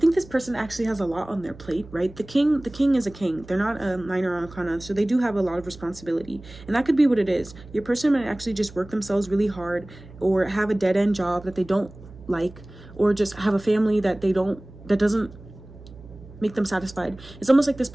this person actually has a lot on their plate, right? The king is a king. They're not a minor arcana, so they do have a lot of responsibility. And that could be what it is. Your person might actually just work themselves really hard, or have a dead-end job that they don't like, or just have a family that doesn't make them satisfied. It's almost like this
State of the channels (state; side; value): noise; right; hum, 19 dB below the sound